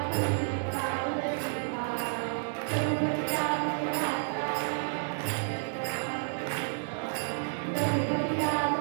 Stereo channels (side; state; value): left; silent; 57 dB below the other